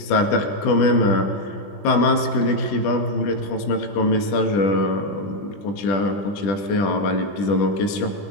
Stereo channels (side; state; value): right; late; 20 ms